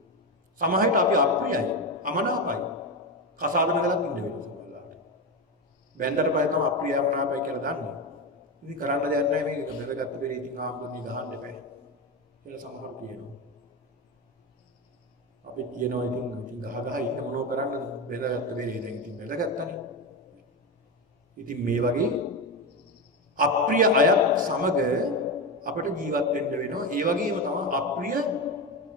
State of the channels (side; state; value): both; normal; correlation 0.16